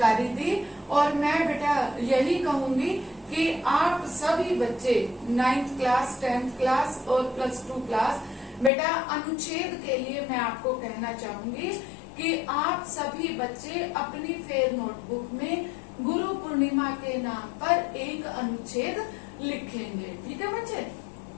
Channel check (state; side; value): drops out; right; at 8.7 s